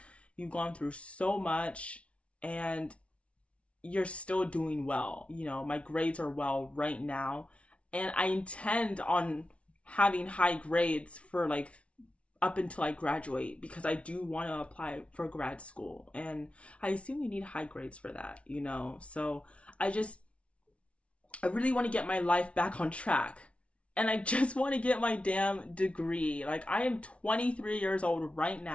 you've gone through so much and you're still doing well. My grades are well right now, and I intend on having high grades for like up until I graduate, because I do want to apply for grad school, and I assume you need high grades for that, So I really want to get my life back on track. And I just want to get my damn degree. Like, I am 23 years old right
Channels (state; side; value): late; right; 0.062 ms